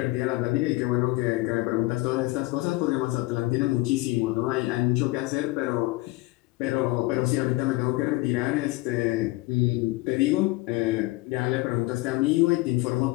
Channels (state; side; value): quieter; right; 20.4 dB